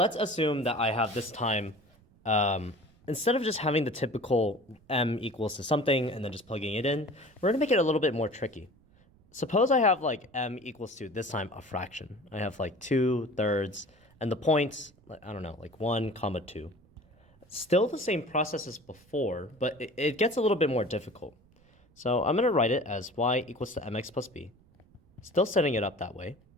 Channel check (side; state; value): right; noise; rumble, 30 dB below the sound